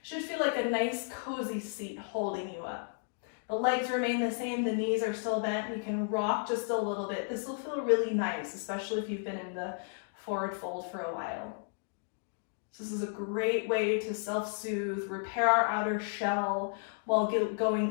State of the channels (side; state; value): right; silent; digital silence